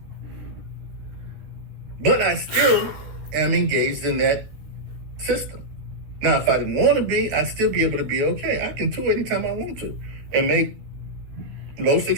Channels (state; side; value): late; left; 14 ms